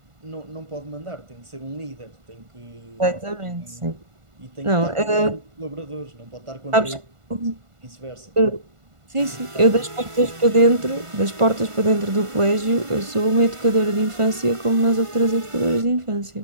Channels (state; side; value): late; left; 1.5 ms